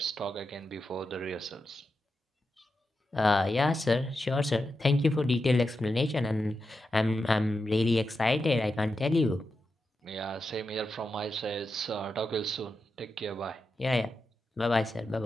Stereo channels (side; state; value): both; normal; correlation 0.88